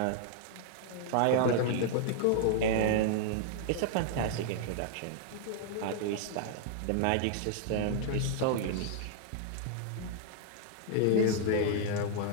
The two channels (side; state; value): both; different; correlation -0.01